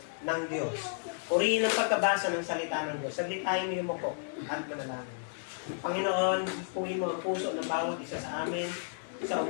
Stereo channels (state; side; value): silent; right; 56 dB below the other